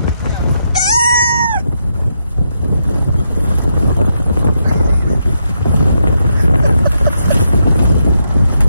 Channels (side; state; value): both; inverted; correlation -0.81